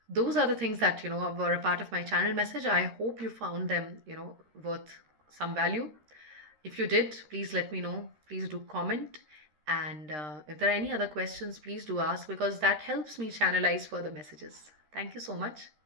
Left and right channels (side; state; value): left; late; 13 ms